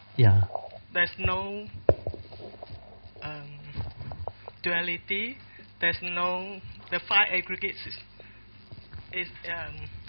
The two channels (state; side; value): inverted; both; correlation -1.00